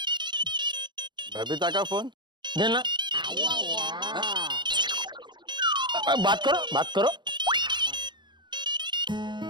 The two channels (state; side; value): late; left; 0.22 ms